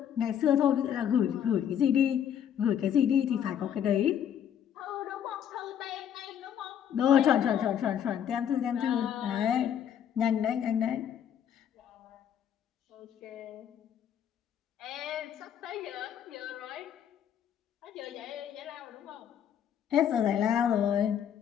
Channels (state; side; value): quieter; right; 9.2 dB